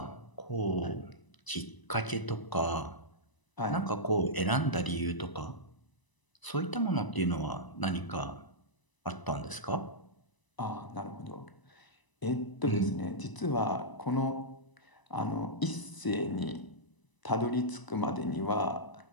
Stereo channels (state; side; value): late; right; 1.0 ms